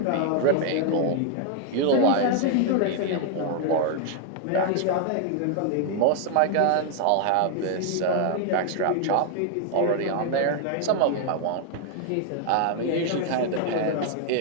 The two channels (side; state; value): both; different; correlation 0.00